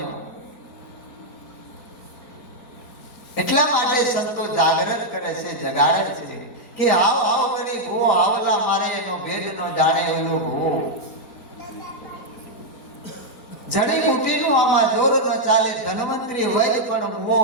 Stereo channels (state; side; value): late; right; 4.0 ms